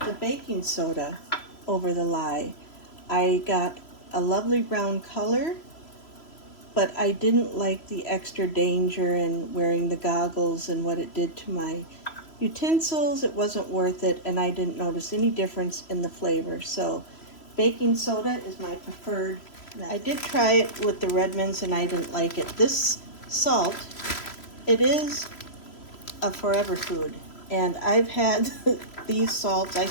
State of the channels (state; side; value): late; right; 3.0 ms